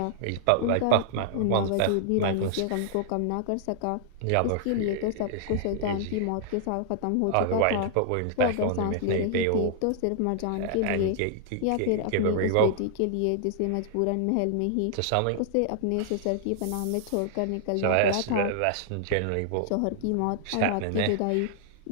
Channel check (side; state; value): both; different; correlation -0.01